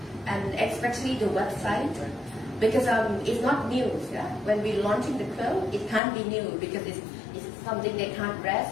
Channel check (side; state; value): right; drops out; at 6.0 s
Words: and especially the website, because it's not news. Yeah? When we're launching the quilt, it can't be new because it's something they can't